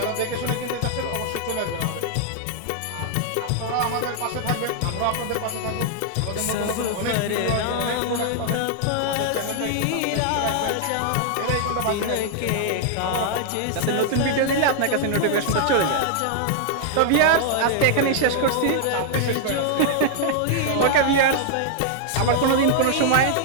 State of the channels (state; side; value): different; both; correlation -0.01